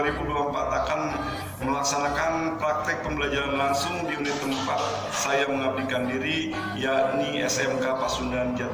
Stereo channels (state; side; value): identical; both; correlation 1.00